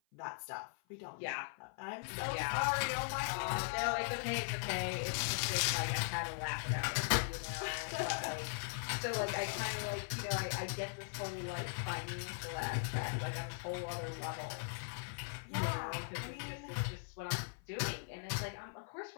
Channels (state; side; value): silent; right; 51 dB below the other